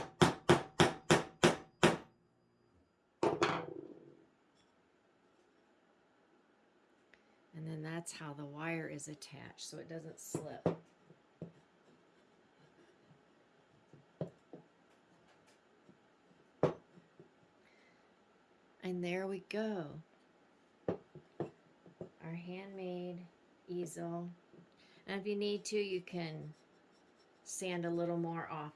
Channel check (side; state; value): both; identical; correlation 1.00